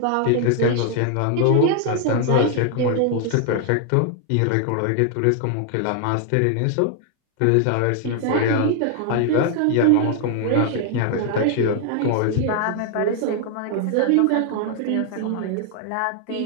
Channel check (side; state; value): both; different; correlation 0.00